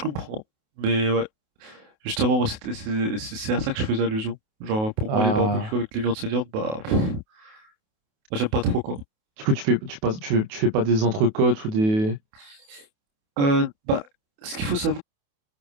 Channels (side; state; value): left; late; 28 ms